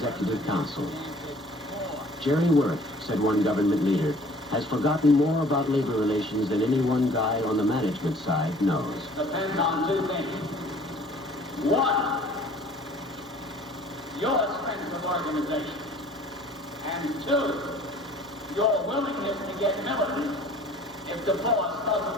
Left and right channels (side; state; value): both; normal; correlation 0.52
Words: council. Jerry Worth, said one government leader, has forgotten more about labor relations than any one guy on the management side knows. Depends on 2 things. 1, your strength of organization. And 2, your willingness to get militant if the boss